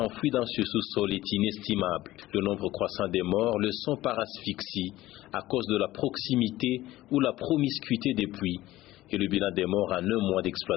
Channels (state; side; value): quieter; right; 16.4 dB